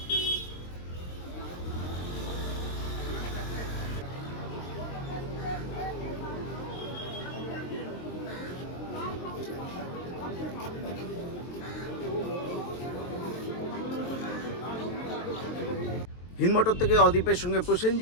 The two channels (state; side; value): late; right; 23 ms